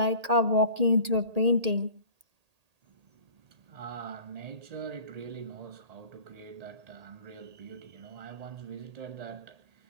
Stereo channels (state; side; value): late; left; 1.8 ms